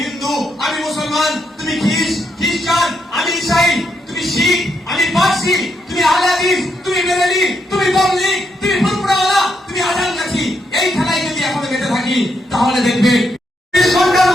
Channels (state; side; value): normal; both; correlation 0.79